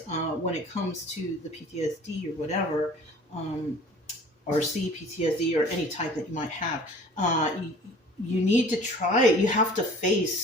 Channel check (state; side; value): normal; both; correlation 0.47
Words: when it comes to the PTSD or whatever, or CPTSD or any type that you might have, you need to try it. You have to